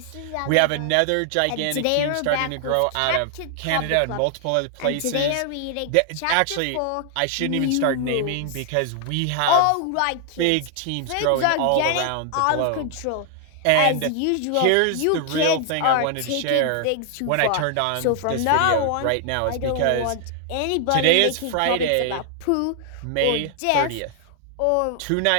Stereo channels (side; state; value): both; different; correlation 0.00